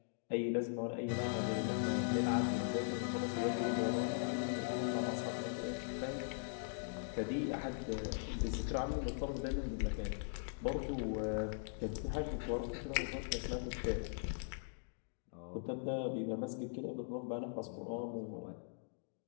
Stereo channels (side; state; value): right; silent; digital silence